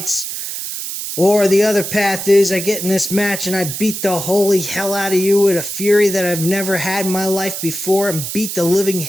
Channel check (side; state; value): right; noise; hiss, 6 dB below the sound